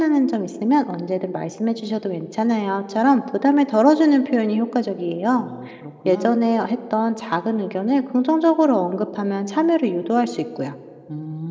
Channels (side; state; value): both; identical; correlation 1.00